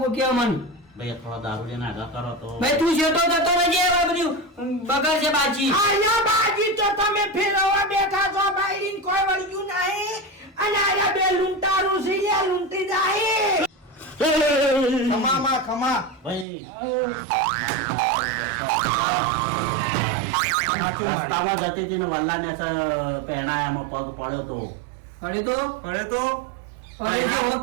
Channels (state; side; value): drops out; left; at 16.4 s